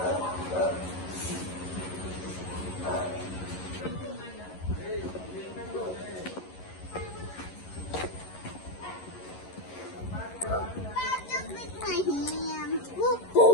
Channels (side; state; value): right; late; 11 ms